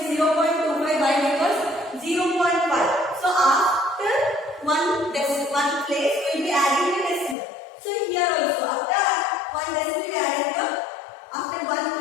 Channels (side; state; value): right; drops out; at 7.4 s